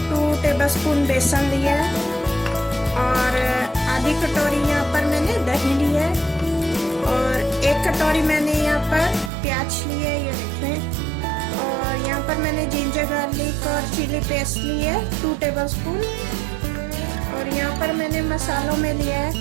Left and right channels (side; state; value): left; drops out; at 9.3 s